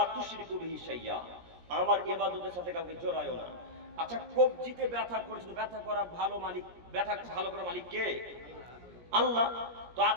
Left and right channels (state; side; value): late; left; 17 ms